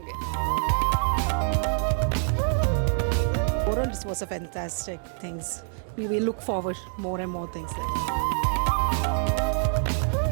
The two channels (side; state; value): left; silent; digital silence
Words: Overall, this was a fantastic things. We will look forward more and more things there.